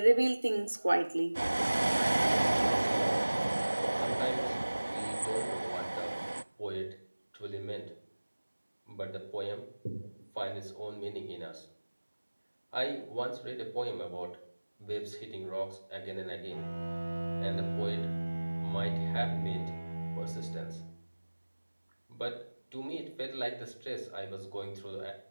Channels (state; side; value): inverted; both; correlation -1.00